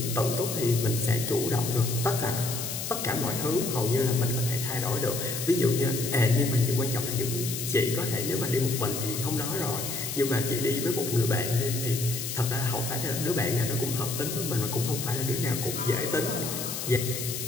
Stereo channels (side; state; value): left; noise; hiss, 5 dB below the sound